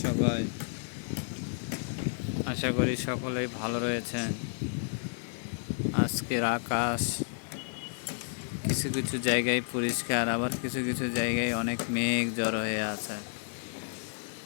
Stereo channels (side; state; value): right; silent; 57 dB below the other